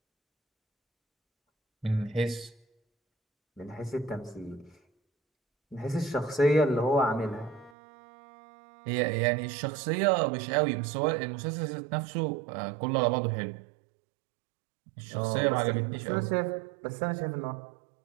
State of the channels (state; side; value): drops out; left; at 7.7 s